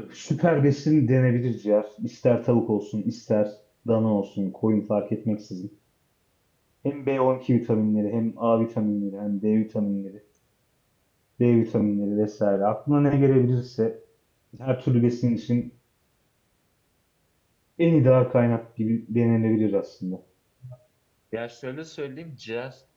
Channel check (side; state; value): both; identical; correlation 1.00